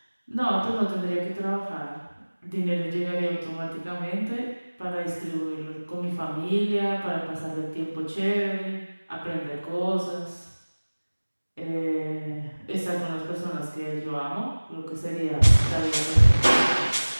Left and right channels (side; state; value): both; inverted; correlation -1.00